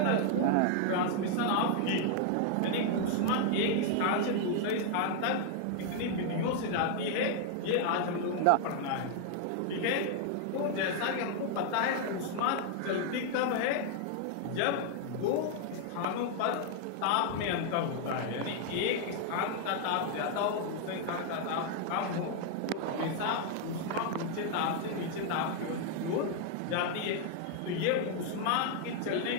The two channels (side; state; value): both; different; correlation 0.00